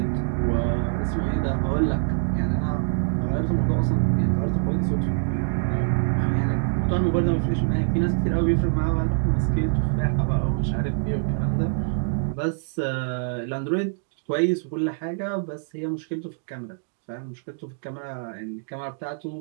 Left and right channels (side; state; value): left; silent; digital silence